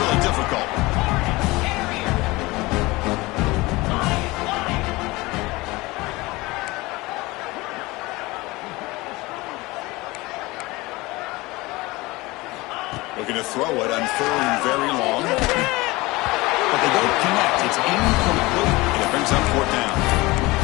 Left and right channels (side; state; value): right; quieter; 21.7 dB